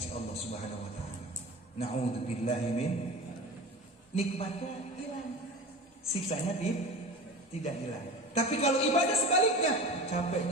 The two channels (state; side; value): normal; both; correlation 0.33